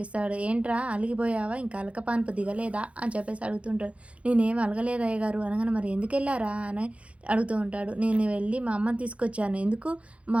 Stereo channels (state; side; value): late; left; 0.063 ms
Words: ఇస్తాడు. ఏంట్రా అలిగిపోయావా, ఇంకా అలకపాన్పు దిగలేదా అని చెప్పేసి అడుగుతుంటాడు. నేనేం అలగలేదు అయ్యగారు అనగానే, మరి ఎందుకు వెళ్ళారా అని అడుగుతూ ఉంటాడు. నేను వెళ్ళి మా అమ్మని తీసుకొచ్చాను. ఎందుకు? మా